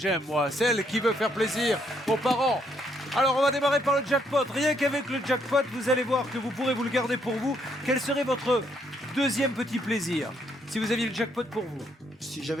moi. Celle qui veut faire plaisir aux parents. Alors, on va démarrer par le jackpot. Rien qu'avec le jackpot, vous allez voir que vous pourrez vous le garder pour vous. Quel serait votre deuxième petit plaisir, si vous aviez le jackpot pour vous? Si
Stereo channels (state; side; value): normal; both; correlation 0.72